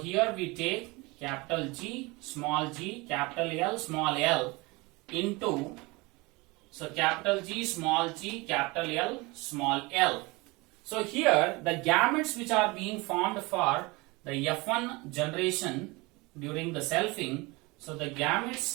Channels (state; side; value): quieter; left; 24.4 dB